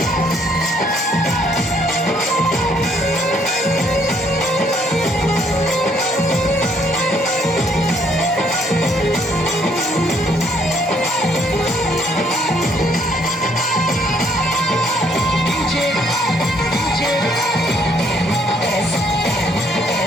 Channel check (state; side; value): normal; both; correlation 0.67